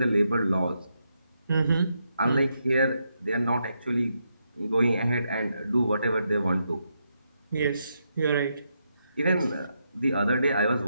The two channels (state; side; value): inverted; both; correlation -0.81